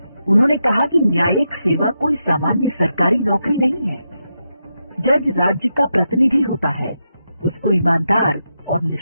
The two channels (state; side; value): inverted; both; correlation -0.86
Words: उन्होंने कहा कि न्यायिक सेवा कोई सामान्य सरकारी नौकरी नहीं है। जज राज्य का प्रतिनिधि होता है, उसको ईमानदार और